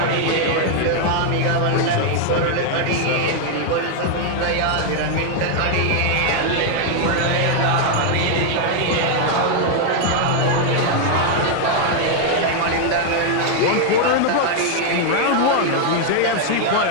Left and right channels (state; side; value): different; both; correlation 0.00